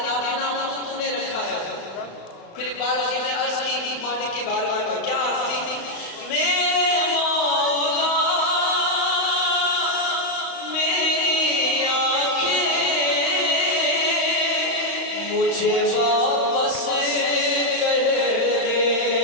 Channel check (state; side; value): late; right; 35 ms